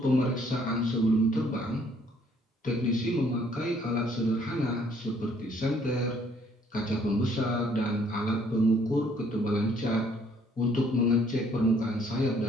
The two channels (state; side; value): normal; both; correlation 0.63